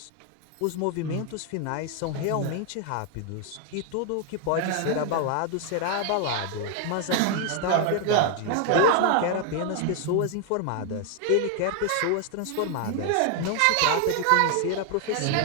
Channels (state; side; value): different; both; correlation 0.00